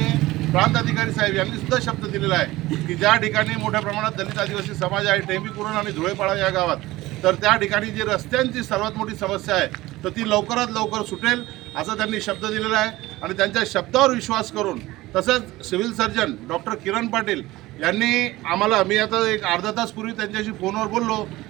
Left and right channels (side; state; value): left; quieter; 18.3 dB